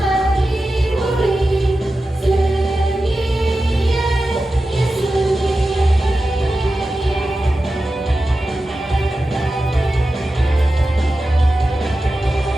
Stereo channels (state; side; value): normal; both; correlation 0.93